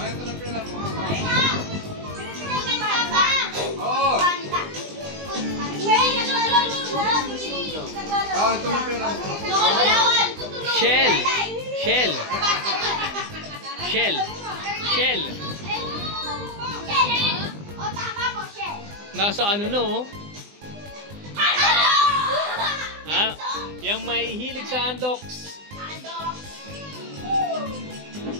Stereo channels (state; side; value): late; left; 20 ms